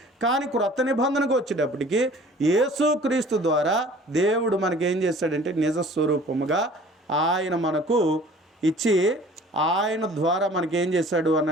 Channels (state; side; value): normal; both; correlation 0.49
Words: కానీ క్రొత్త నిబంధనకు వచ్చేటప్పటికి యేసుక్రీస్తు ద్వారా దేవుడు మనకేం చేశాడంటే నిజ స్వరూపముగా ఆయన మనకు ఇచ్చి ఆయన ద్వారా మనకేం చేశాడు